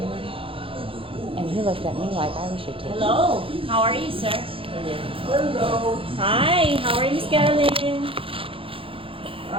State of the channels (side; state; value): left; late; 0.26 ms